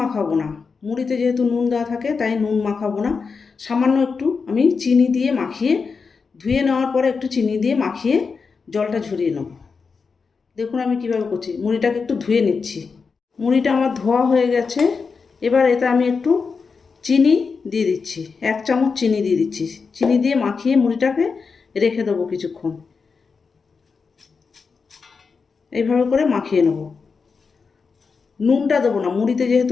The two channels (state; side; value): quieter; right; 5.1 dB